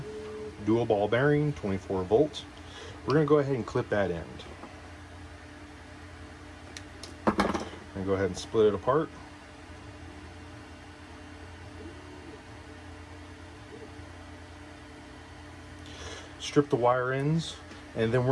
dual ball bearing, 24 volts. We're going to go ahead and clip that end. And go ahead and split it apart. Strip the wire ends, and then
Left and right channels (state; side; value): identical; both; correlation 1.00